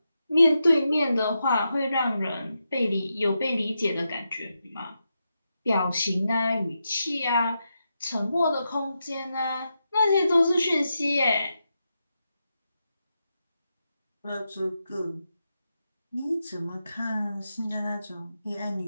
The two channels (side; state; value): both; inverted; correlation -0.87